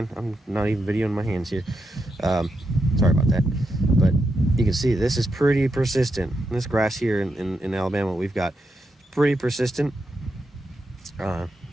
I'm not even videoing my hands here. Sorry about that. But you can see this is pretty persistent. This grass here in Alabama we've got pretty persistent.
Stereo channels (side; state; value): both; normal; correlation 0.84